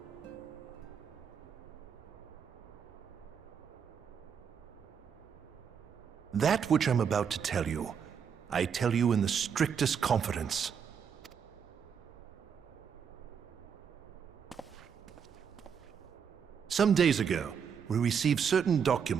That which I'm about to tell you, I tell you in the strictest confidence. Some days ago, we received certain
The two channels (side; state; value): left; quieter; 7.2 dB